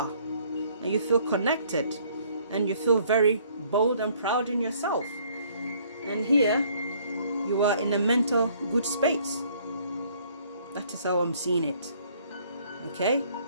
and you feel connected, and you feel very bold and proud in yourself. And here you are in a mental good space. That is how I'm seeing it. Okay,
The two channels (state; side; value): inverted; both; correlation -0.61